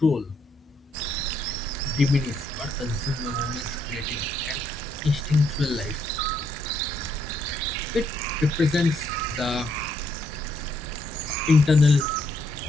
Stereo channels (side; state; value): both; normal; correlation 0.73